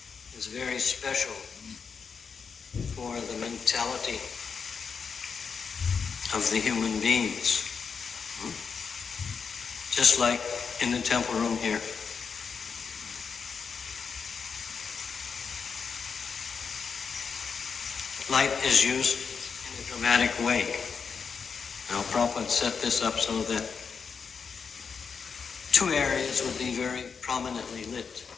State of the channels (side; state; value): right; quieter; 5.9 dB